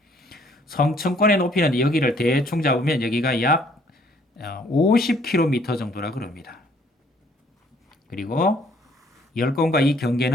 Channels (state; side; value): normal; both; correlation 0.62